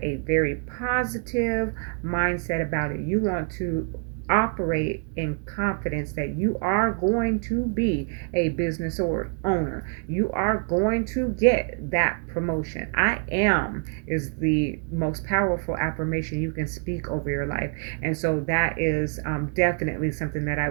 a very positive mindset about it. You want to operate in confidence that you are going to be a business or owner. You are going to get that promotion. I am is the most powerful affirmation you can speak over your life. And so that is definitely something that I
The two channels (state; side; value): quieter; left; 40.0 dB